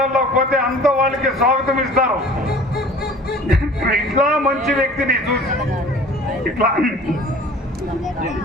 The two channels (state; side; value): normal; both; correlation 0.45